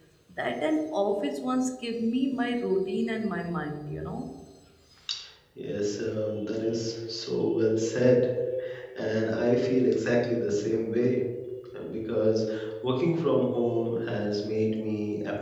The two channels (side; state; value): both; identical; correlation 1.00